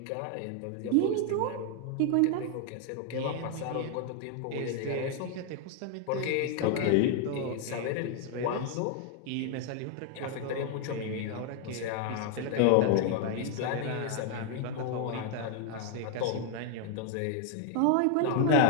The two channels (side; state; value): both; different; correlation 0.00